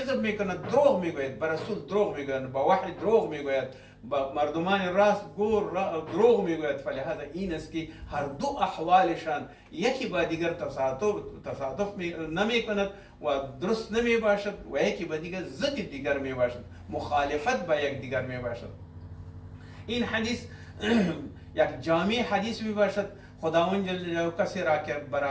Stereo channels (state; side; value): identical; both; correlation 1.00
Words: میکنند، دروغ میگوید، به رسول دروغ میگوید، با وحی دروغ میگوید، با مردمان راست گور دروغ میگوید. فلهذا این است که هر دو احوالشان یکی با دیگر تصادف نمیکند و درست نمی باشد و یکی با دیگر ضد دیگر می باشد، مخالفت با یک دیگر می باشد. این حدیث یک جامع حدیث می باشد. خداوند جل جلاله کسی را که به